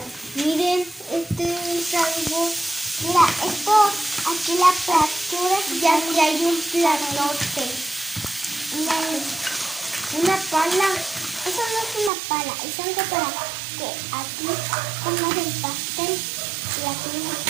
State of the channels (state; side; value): drops out; left; at 12.1 s